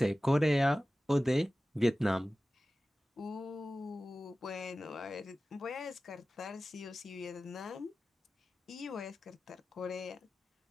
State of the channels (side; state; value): both; normal; correlation 0.96